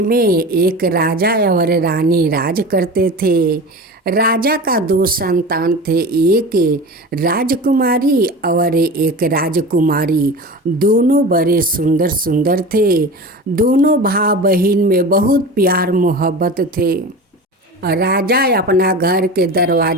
में एक राजा और रानी राज करते थे। राजा का दो संतान थे, एक राजकुमारी और एक राजकुमारी। दोनों बड़े सुंदर सुंदर थे। दोनों भाई बहन में बहुत प्यार मोहब्बत थे। राजा अपना घर के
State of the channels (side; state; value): both; normal; correlation 0.32